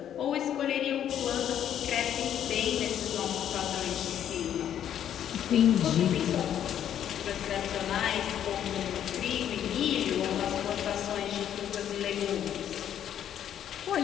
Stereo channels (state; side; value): quieter; right; 10.1 dB